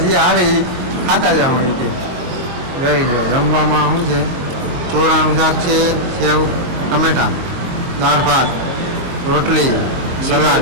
આવે ઈ ખાતા જાઉં એ કે જોઈ લો જમવામાં શું છે ચોરાનું શાક છે સેવ ટમેટા દાળ ભાત રોટલી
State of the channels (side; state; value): left; late; 22 ms